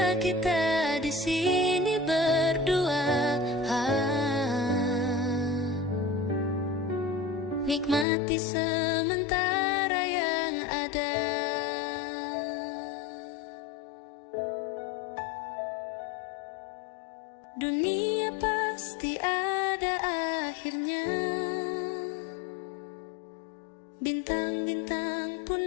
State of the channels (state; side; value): drops out; right; at 8.1 s